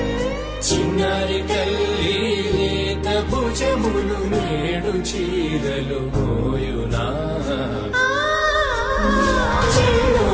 చిన్నారి తల్లి లేత భుజములు నేడు చీరలు మోయునా చెల్లో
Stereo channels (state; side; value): identical; both; correlation 1.00